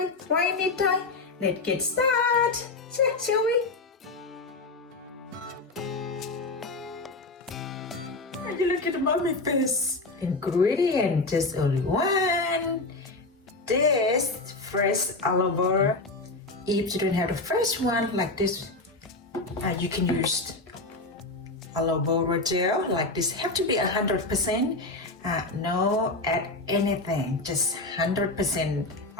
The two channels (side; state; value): right; quieter; 3.2 dB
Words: Right, Nitnoy? Let's get started. Shall we? And you look at the mommy face. Ingredient, just only one. This fresh aloe vera. If you don't have the fresh one like this, you can use aloe vera gel like this. Have to be 100%. No add anything, just 100%